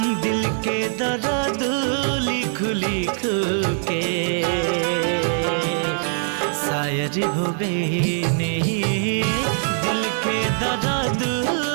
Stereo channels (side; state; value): left; silent; digital silence